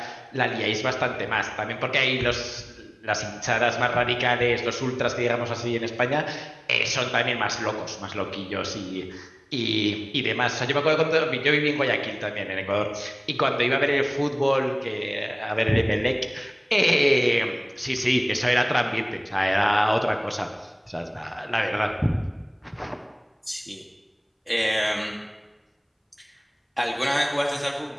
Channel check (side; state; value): both; identical; correlation 1.00